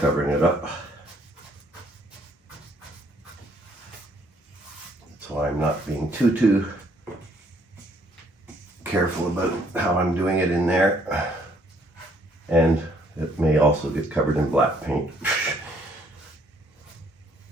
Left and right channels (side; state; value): both; normal; correlation 0.66